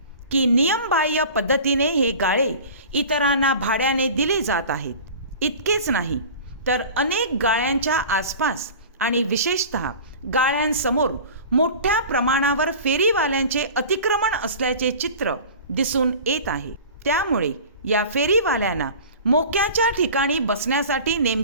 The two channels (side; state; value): both; inverted; correlation -0.39